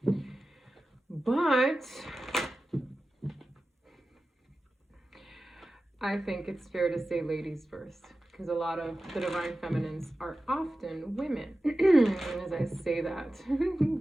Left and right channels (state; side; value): normal; both; correlation 0.94